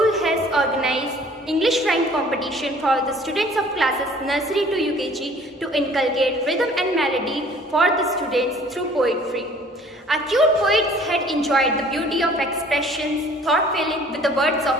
has organized English rhyme competition for the students of classes nursery to UKG to inculcate rhythm and melody for the students through poetry. Our cute poets had enjoyed the beauty of expressions, thought-filling with the words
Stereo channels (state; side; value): normal; both; correlation 0.53